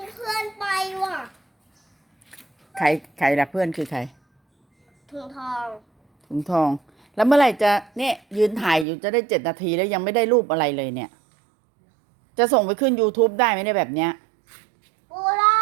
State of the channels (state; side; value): drops out; left; at 8.8 s